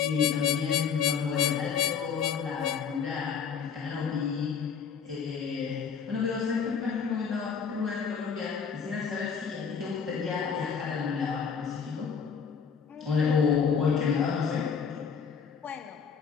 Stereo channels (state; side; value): quieter; right; 6.5 dB